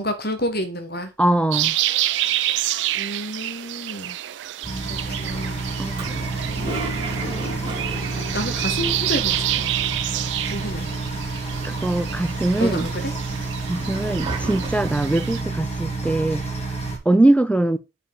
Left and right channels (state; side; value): quieter; left; 3.3 dB